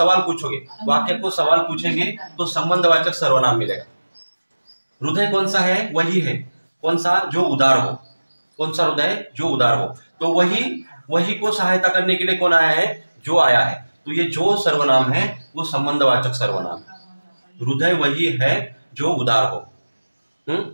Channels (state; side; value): inverted; both; correlation -1.00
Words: पूछोगे, वाक्य को सवाल पूछेंगे तो संबंधवाचक सर्वनाम मिलेगा। हृदय कौन सा है, वही है, कौन सा, जो उदार हो, कौन सा हृदय, जो उदार हो। तो वही को सहायता करने के लिए कौन आया है, जो आया है। तो ये जो सर्वनाम है वो संबंधवाचक सर्वनाम है। हृदय वही है जो उदार हो,